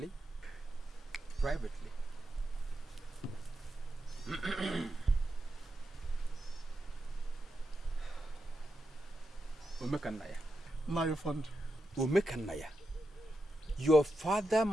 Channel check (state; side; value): normal; both; correlation 0.87